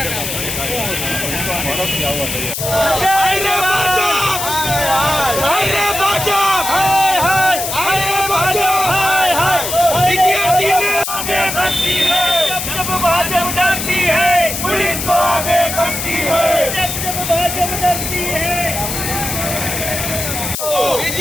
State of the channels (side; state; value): left; noise; hiss, 4 dB below the sound